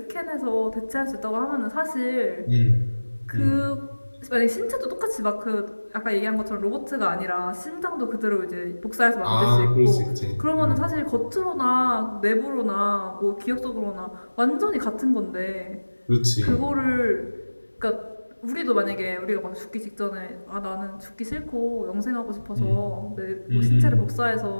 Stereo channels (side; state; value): both; inverted; correlation -1.00